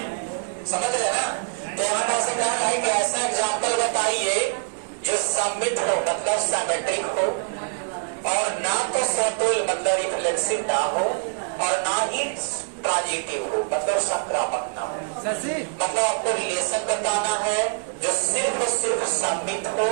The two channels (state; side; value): silent; left; digital silence